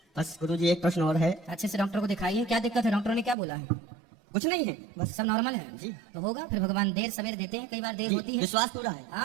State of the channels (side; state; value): left; drops out; at 3.4 s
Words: बस गुरुजी, एक प्रश्न और है। अच्छे से डॉक्टर को दिखाइए, क्या दिक्कत है? डॉक्टर ने क्या बोला है? कुछ नहीं है, बस सब नॉर्मल है जी। तो होगा। फिर भगवान देर सवेर देते हैं, कई बार देर होती है। विश्वास पूरा है।